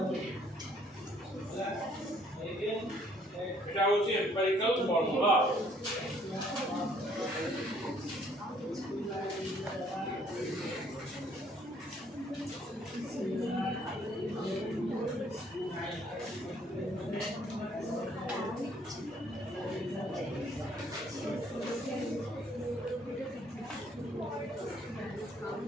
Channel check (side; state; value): both; normal; correlation 0.63